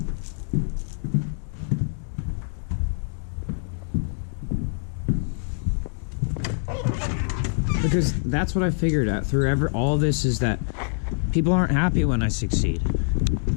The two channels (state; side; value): silent; right; digital silence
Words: Because that's what I figured out through all of this, is that people aren't happy when I succeed.